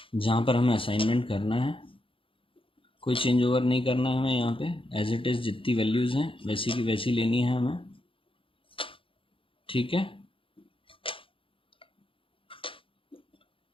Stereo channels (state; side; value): late; right; 0.26 ms